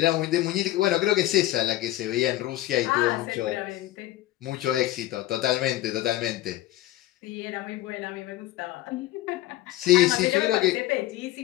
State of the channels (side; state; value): right; quieter; 15.7 dB